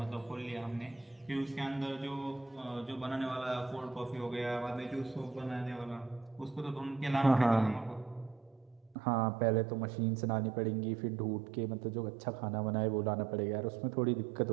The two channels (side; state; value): left; drops out; at 9.0 s